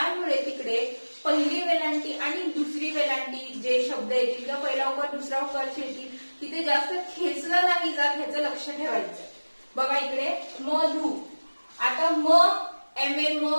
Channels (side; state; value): both; inverted; correlation -1.00